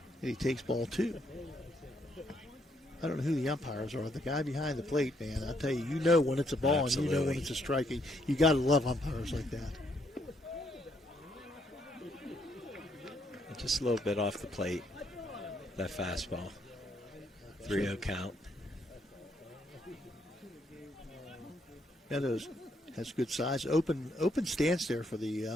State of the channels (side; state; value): both; normal; correlation 0.73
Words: And he takes ball 2. I don't know who the umpires are. The guy behind the plate, man, I tell you, when it's a ball. Absolutely. And when it's a strike. You got to love umpires like that. Just a little bit off the plate. That fastball. 3-0 count. Meadows has good size. Open stance there for